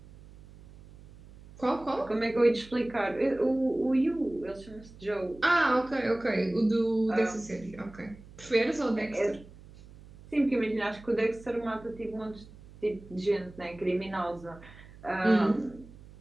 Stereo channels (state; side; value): noise; right; hum, 20 dB below the sound